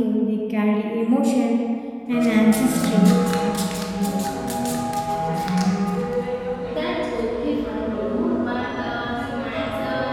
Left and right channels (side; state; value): both; identical; correlation 1.00